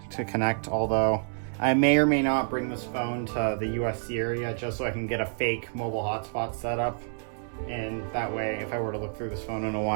to connect, although I may or may not bring this phone to the USC area just so I can get a fake mobile hotspot set up. And that way, if I were to look through this phone in a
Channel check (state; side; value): silent; left; 59 dB below the other